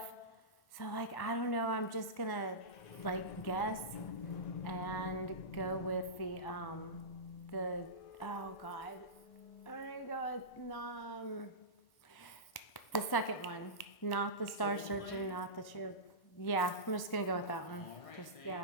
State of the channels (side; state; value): right; late; 1.1 ms